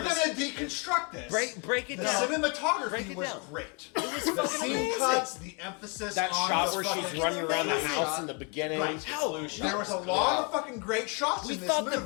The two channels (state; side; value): quieter; right; 33.4 dB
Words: gonna deconstruct this, Break it the down. cinematography Break it was down. great. was The fucking scene amazing. cuts, the emphasis That on shot the where fucking, she's running around the amazing. house in the beginning. Right. Hell, There was a lot of fucking great shots we in this thought the